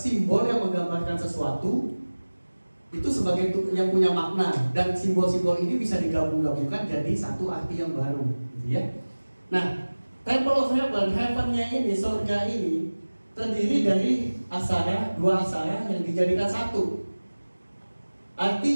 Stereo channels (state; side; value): inverted; both; correlation -1.00